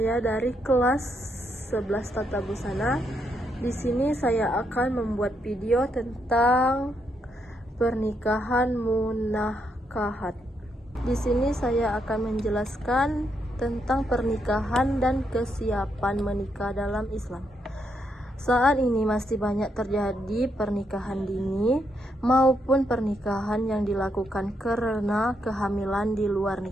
dari kelas 11 Tata Busana. Di sini saya akan membuat video tentang pernikahan munakahat. Di sini saya akan menjelaskan tentang pernikahan dan kesiapan menikah dalam Islam. Saat ini masih banyak terjadi pernikahan dini maupun pernikahan yang dilakukan karena kehamilan di luar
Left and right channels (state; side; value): normal; both; correlation 0.78